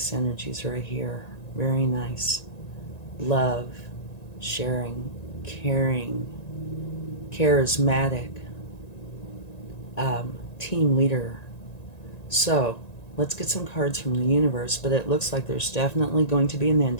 energies right here. Very nice. Love, sharing, caring, charismatic, team leader. So, let's get some cards from the universe, but it looks like there's definitely going to be an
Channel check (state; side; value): late; right; 1.9 ms